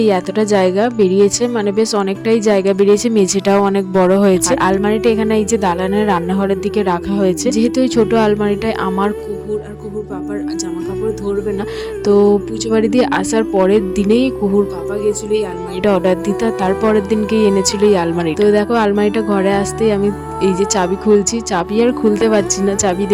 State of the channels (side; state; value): both; identical; correlation 1.00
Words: এই এতটা জায়গা বেরিয়েছে, মানে বেশ অনেকটাই জায়গা বেরিয়েছে, মেঝেটাও অনেক বড় হয়েছে। আর আলমারিটা এখানে এই যে দালানের রান্নাঘরের দিকে রাখা হয়েছে। যেহেতু এই ছোট আলমারিটায় আমার কুকুর আর কুকুর পাপার জামা কাপড় ধরবে না, তো পুজো বাড়ি দিয়ে আসার পরের দিনেই কুকুর পাপা গেছিল এই আলমারিটা অর্ডার দিতে, তার পরের দিনকেই এনেছিল এই আলমারি। তো দেখো আলমারিটা ঘরে আসতেই আমি এই যে চাবি খুলছি, চাবি আর খুলতে পারছি না, চাবি